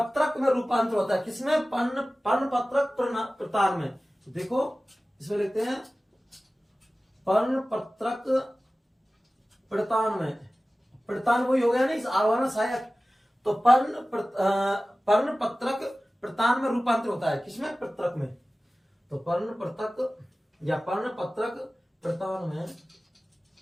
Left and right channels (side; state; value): both; normal; correlation 0.97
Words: में रूपांतर होता है, किसमें, पर्ण पत्रक प्रतान में। तो देखो इसमें लिखते हैं पर्ण पत्रक प्रतान में, प्रतान वही हो गया ना, इस आरोहण सहायक। तो पर्ण पत्रक प्रतान में रूपांतर होता है, किसमें, पत्रक में। तो पर्ण पत्रक या पर्ण पत्रक प्रतान में